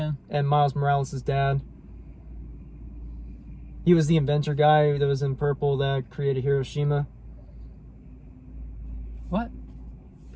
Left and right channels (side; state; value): both; identical; correlation 1.00